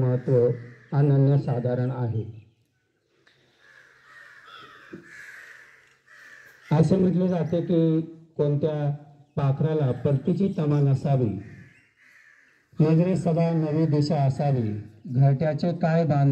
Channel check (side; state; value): both; identical; correlation 1.00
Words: अनन्यसाधारण आहे. असे म्हटले जाते की कोणत्या पाखराला परतीची तमा नसावी, नजरे सदा नवी दिशा असावी, घरट्याचे काय